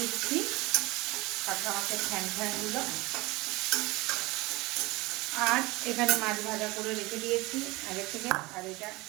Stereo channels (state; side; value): quieter; left; 22.3 dB